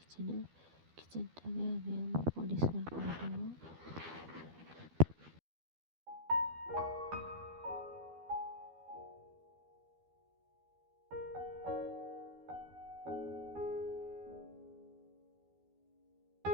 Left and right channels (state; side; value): late; left; 12 ms